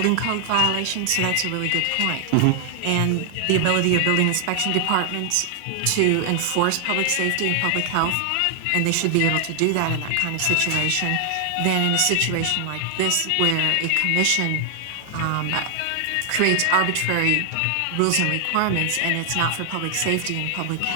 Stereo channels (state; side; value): different; both; correlation 0.00